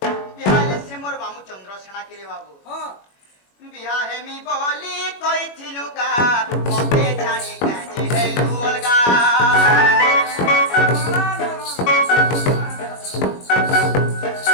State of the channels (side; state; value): right; late; 21 ms